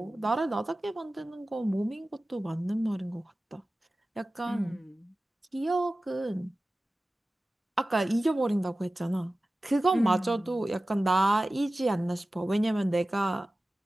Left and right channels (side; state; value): both; normal; correlation 0.96